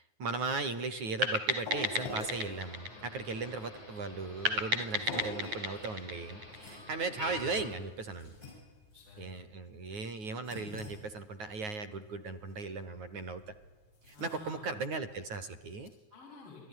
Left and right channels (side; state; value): left; late; 9.4 ms